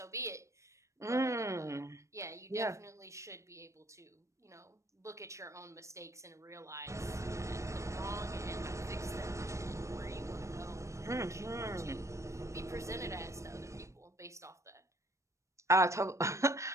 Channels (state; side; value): late; left; 0.15 ms